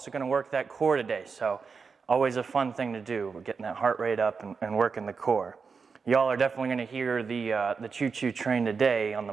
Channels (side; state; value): left; quieter; 5.2 dB